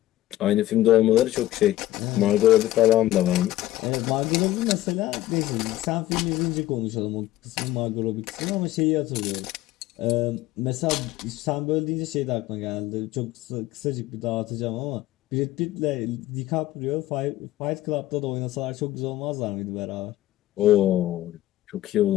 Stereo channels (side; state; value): right; quieter; 15.1 dB